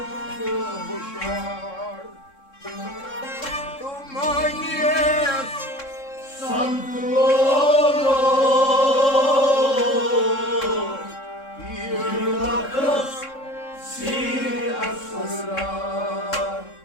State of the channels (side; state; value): right; late; 3.7 ms